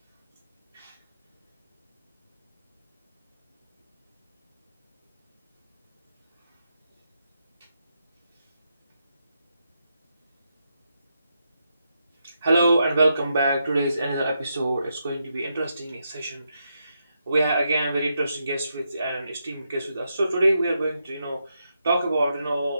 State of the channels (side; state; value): both; inverted; correlation -0.83